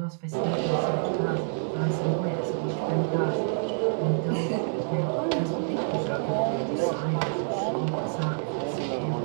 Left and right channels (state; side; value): silent; left; digital silence